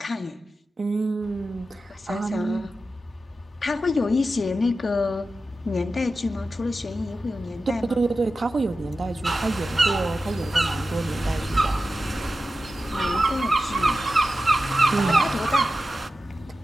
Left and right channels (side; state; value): both; normal; correlation 0.93